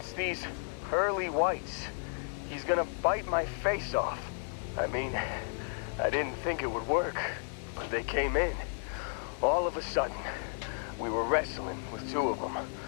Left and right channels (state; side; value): silent; right; 56 dB below the other